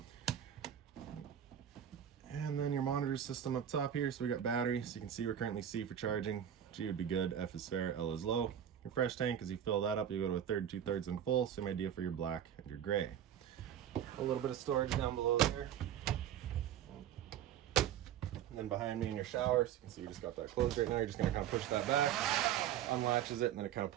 And then your monitor system up top here. So we got battery, so you can see we're currently C for charging. G would be good, F is fair, L is low. Your fresh tank, as you fill that up, you go to a third, 2/3 and full. Same idea for your black and your gray. A little bit of storage down below there. And then behind me in your shower, so you can see we just got that closed right now. You're just gonna kind of push that back, unlatches it, and then it kind of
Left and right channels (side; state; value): left; quieter; 9.9 dB